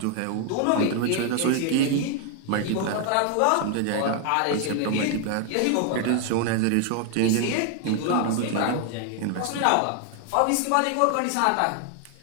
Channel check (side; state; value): both; different; correlation 0.00